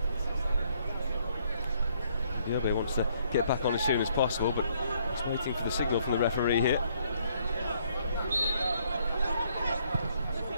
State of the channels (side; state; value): both; inverted; correlation -0.68